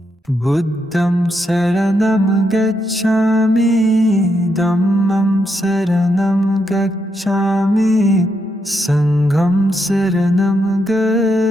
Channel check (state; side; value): normal; both; correlation 0.81